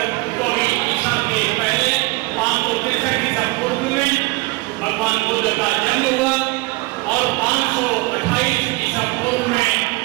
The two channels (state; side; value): quieter; left; 23.6 dB